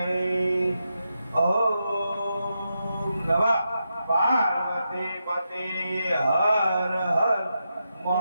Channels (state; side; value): inverted; both; correlation -0.86